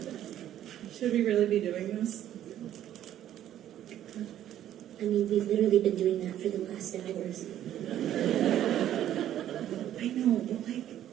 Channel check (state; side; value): quieter; left; 11.7 dB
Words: should we really be doing this? I mean, we've literally been doing that for the last hours. I know, but like,